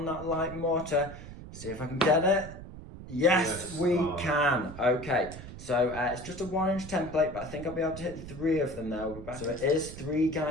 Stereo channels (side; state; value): right; noise; rumble, 13 dB below the sound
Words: that light mortar. See if I can get it. Yes, we can. Okay, so it's just a 1-inch template, but I think I'll be able to hit 3 of them now. So it is 3